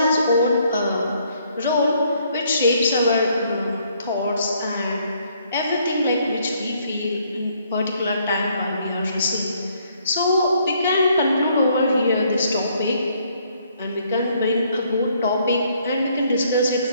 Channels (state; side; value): inverted; both; correlation -0.67